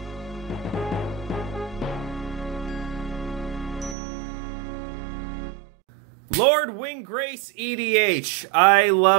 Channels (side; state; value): left; drops out; at 4.0 s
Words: Lord Windgrace EDH. I